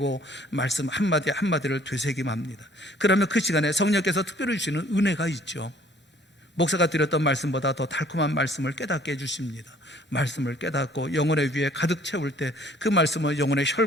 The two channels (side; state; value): both; normal; correlation 0.57